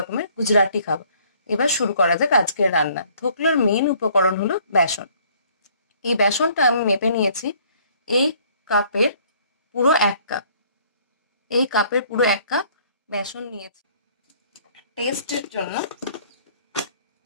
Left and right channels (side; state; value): both; inverted; correlation -0.60